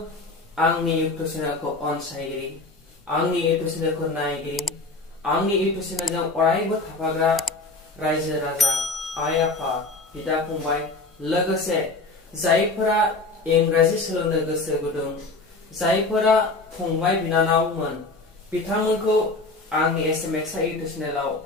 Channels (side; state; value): right; quieter; 3.3 dB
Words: आंनि इउट्यूब चेनेलखौ अनसायगिरि आंनि इउट्यूब चेनेलखौ नायगिरि आंनि इउट्यूब चेनेलजों अरायबो थाफाग्रा रायजो राजा आइ आफा बिदा फंबाय लोगोसे जायफोरा इंराजि सोलोंनो गोसो गुदुं जायफोरा फंबाय बिनानावमोन बिथांमोनखौ आंनि एसएमएक्स इउट्यूब चेनेलाव